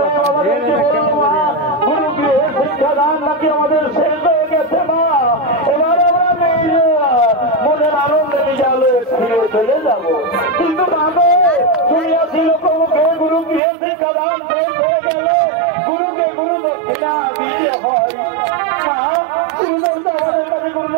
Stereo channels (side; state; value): left; drops out; at 13.6 s